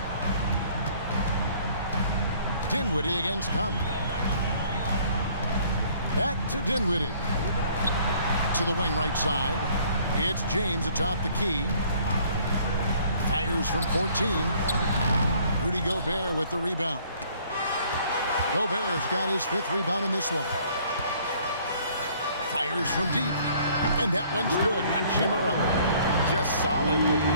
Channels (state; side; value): inverted; both; correlation -0.58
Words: Dinwiddie against Conley. Back to Dinwiddie. To the wing right side. It's James atop the key. Fires from 14. Rudy Gobert with the rebound. Gobert's got his 5th rebound in this one. Fires from deep. And that one's good. Hachimura. Just solid with the